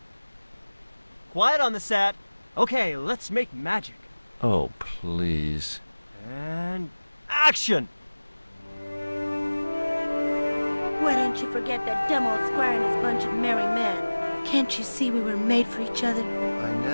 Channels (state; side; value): inverted; both; correlation -1.00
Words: Quiet on the set. Okay, let's make magic. Oh, please. And action! Why didn't you forget that dumb old squire and his bunch of merry men? Can't you see we were made for each other? I